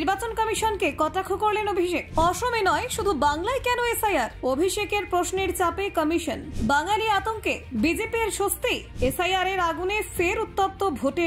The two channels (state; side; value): identical; both; correlation 1.00